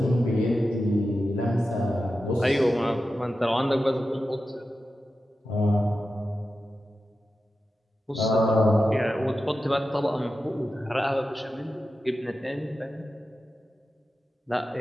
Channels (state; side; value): normal; both; correlation 0.91